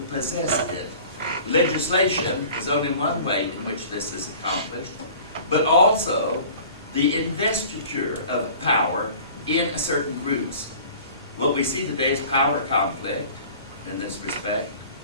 possess it. Legislation is only one way in which this is accomplished, but also the investiture of power in certain groups. What we see today is power conflict, in this respect,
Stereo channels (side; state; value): both; inverted; correlation -0.45